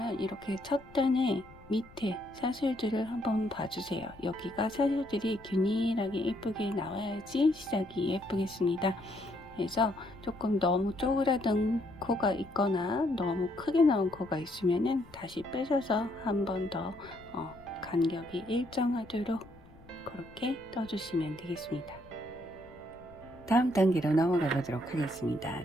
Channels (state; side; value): noise; left; rumble, 22 dB below the sound